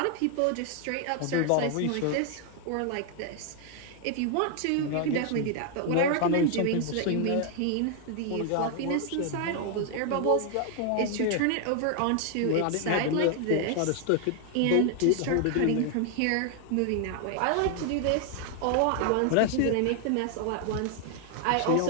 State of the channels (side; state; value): both; different; correlation 0.00